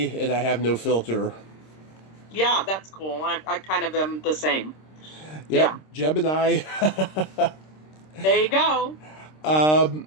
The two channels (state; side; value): late; right; 26 ms